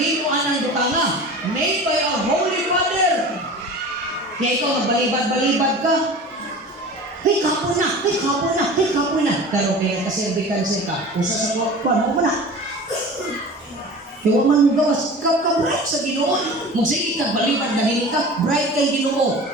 ng butanga, made by our Holy Father. Kaya ikaw, magbalibad-balibad ka. Hey, kapoy na! Hey, kapoy na! Hey, kapoy na! Pero kaya kaserbikansi ka, usa sa kuwan mo na. Kaya man mo gawas, ka-bright sa Ginoo. Magsige ka, balibad na ka, bright kay Ginoo.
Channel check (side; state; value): both; normal; correlation 0.37